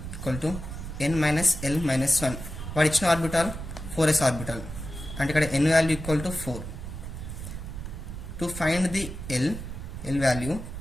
equal to n minus l minus 1. వాడు ఇచ్చిన ఆర్బిటాల్ 4s ఆర్బిటాల్, అంటే ఇక్కడ n value equal to 4. To find the l value,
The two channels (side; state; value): right; noise; rumble, 9 dB below the sound